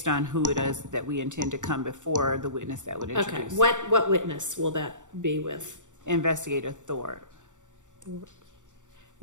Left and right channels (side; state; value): left; late; 0.86 ms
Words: on who it is that we intend to come before the witness that would Okay. introduce. What witness will that be with? Investigator Thor.